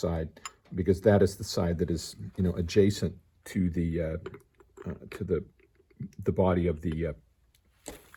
because that is the side that is, adjacent to the body of the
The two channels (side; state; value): both; identical; correlation 1.00